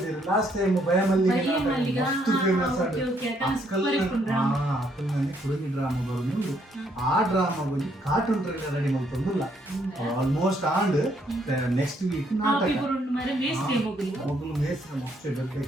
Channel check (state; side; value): normal; both; correlation 0.71